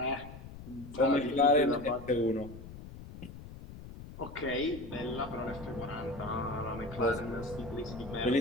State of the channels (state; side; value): noise; left; rumble, 14 dB below the sound